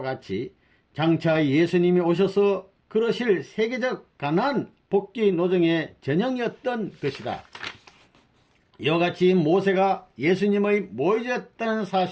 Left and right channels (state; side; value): identical; both; correlation 1.00